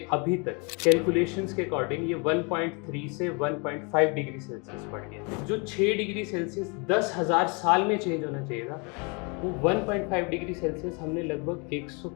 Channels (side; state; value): right; quieter; 32.4 dB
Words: अभी तक कैलकुलेशंस के अकॉर्डिंग ये 1.3 से 1.5 डिग्री सेल्सियस बढ़ गया। जो 6 डिग्री सेल्सियस 10,000 साल में चेंज होना चाहिए था, वो 1.5 डिग्री सेल्सियस हमने लगभग